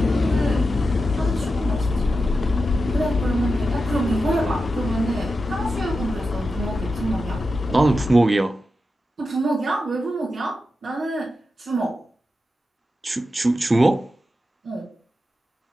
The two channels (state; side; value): normal; both; correlation 0.90